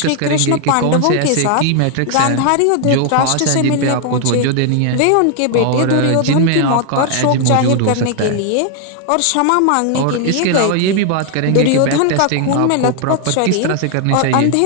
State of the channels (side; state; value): both; different; correlation 0.00